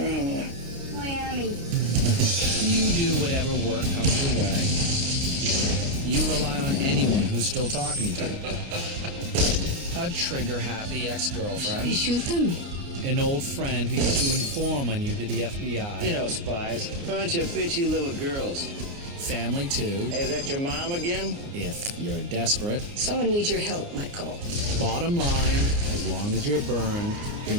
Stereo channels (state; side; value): late; left; 29 ms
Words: Miami. You do whatever work comes your way. You rely on anyone who's still talking to you. A trigger-happy ex-girlfriend. You shoot them? An old friend who used to inform on you to the FBI. You know, spies. Bunch of bitchy little girls. Family, too. Hey, is that your mom again? If you're desperate. Someone needs your help, Michael. Bottom line, as long as you're burned, you're